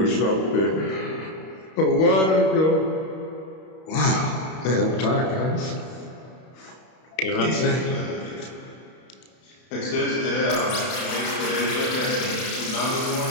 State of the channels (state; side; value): late; right; 32 ms